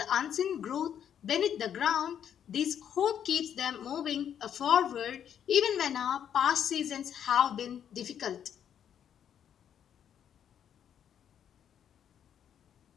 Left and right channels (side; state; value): right; quieter; 9.1 dB